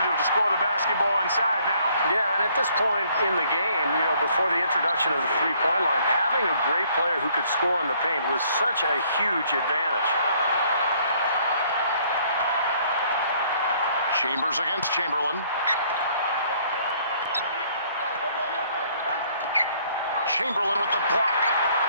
to score the basketball inside now. Yeah, and at this point in the game, before the introduction of the three-point line, having a great player who could score in the paint was such a huge advantage. Chambers against Chamberlain. Chamberlain with the block.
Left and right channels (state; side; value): inverted; both; correlation -0.63